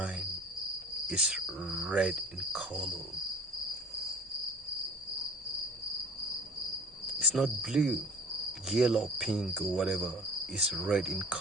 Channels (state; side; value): normal; both; correlation 0.45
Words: is red in color. It's not blue, yellow, pink, or whatever. It's red in